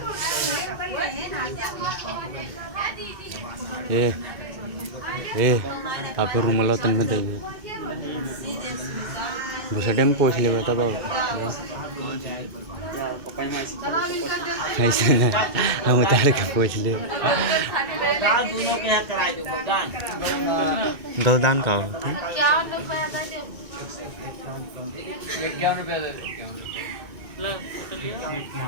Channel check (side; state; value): left; late; 2.2 ms